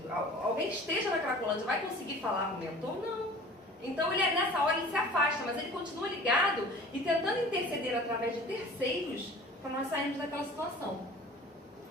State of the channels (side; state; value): both; normal; correlation 0.44